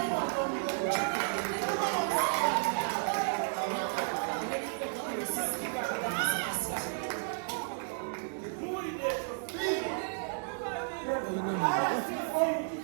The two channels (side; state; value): left; silent; digital silence